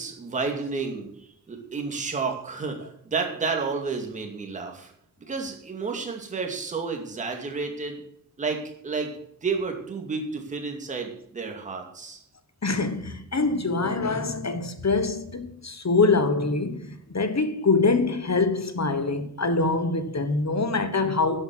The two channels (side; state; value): both; normal; correlation 0.02